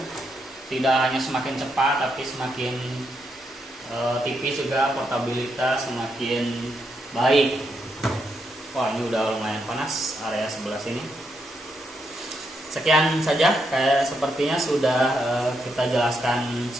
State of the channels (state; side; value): normal; both; correlation 0.80